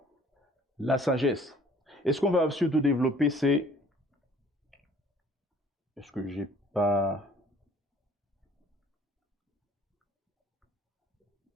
la sagesse. Et ce qu'on va surtout développer, c'est... Est-ce que j'ai pas...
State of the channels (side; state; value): both; normal; correlation 0.54